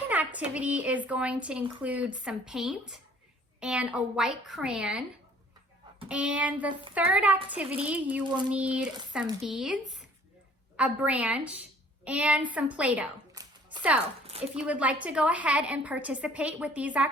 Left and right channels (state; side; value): normal; both; correlation 0.55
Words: activity is going to include some paint and a white crayon. And the third activity, you will need some beads, a branch, and some Play-Doh. So if you would like to go ahead and participate with these